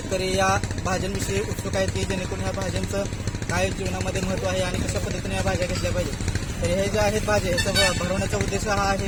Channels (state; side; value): identical; both; correlation 1.00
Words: या भाज्यांविषयी उत्सुक आहेत की जेणेकरून ह्या भाज्यांचं काय जीवनामध्ये महत्त्व आहे आणि कशा पद्धतीने या भाज्या घेतल्या पाहिजे. तर हे ज्या आहेत भाज्या, ह्याचा भरवण्याचा उद्देश हा